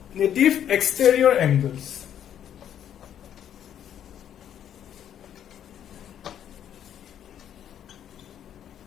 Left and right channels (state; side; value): quieter; right; 9.8 dB